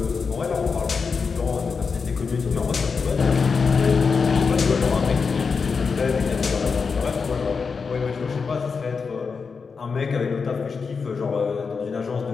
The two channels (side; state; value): right; quieter; 5.2 dB